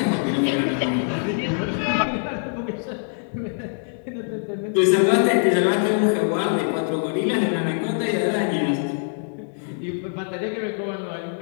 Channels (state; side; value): silent; right; digital silence